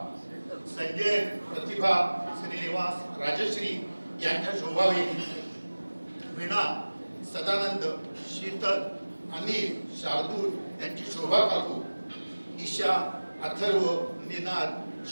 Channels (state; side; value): inverted; both; correlation -1.00